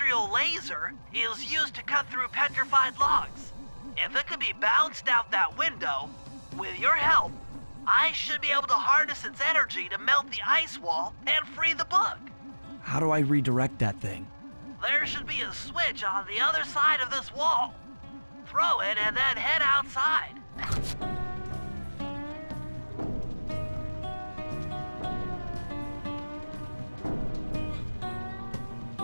laser is used to cut through petrified logs. If it could be bounced out that window, with your help, I should be able to harness its energy to melt the ice wall and free the bug. How do I redirect that thing? There should be a switch on the other side of this wall. Throw it and then head outside.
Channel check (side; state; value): both; inverted; correlation -1.00